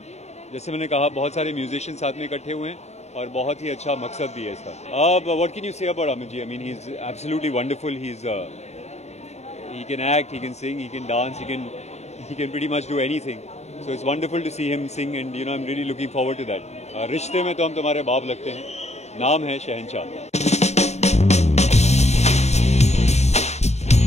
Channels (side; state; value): right; late; 0.32 ms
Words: जैसे मैंने कहा, बहुत सारे म्यूजिशियन साथ में इकट्ठे हुए हैं और बहुत ही अच्छा मकसद भी है इसका। What can you say about Amit ji? I mean, he is absolutely wonderful. He can act, he can sing, he can dance, he can pretty much do anything. So it's wonderful to see him sing, and I'm really looking forward to that. रिश्ते में तो हम तुम्हारे बाप लगते हैं, नाम है शहंशाह।